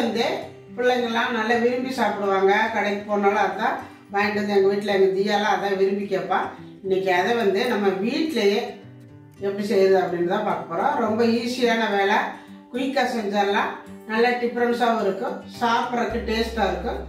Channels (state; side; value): identical; both; correlation 1.00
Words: பிள்ளைங்கள்லாம் நல்லா விரும்பி சாப்பிடுவாங்க. கடைக்கு போனாலும் அதான் வாங்கிட்டு வந்து எங்கள் வீட்டில் எங்கள் தீயாலாம் அதான் விரும்பி கேட்பா. இன்னைக்கு அதை நம்ம வீட்டிலையே எப்படி செய்யுது அப்படின்னு தான் பார்க்க போகிறோம். ரொம்ப ஈஸியான வேலை, குயிக்காக செஞ்சிடலாம். நல்லா டிஃப்ரென்ஸாகவும் இருக்கும், சாப்பிட்றதுக்கு டேஸ்ட்டாக இருக்கும்.